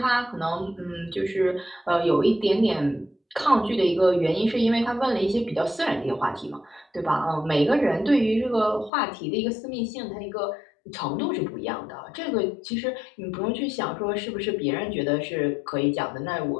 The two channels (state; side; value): drops out; right; at 8.9 s